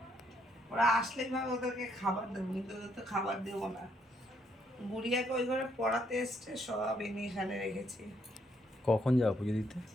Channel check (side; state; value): both; normal; correlation 0.72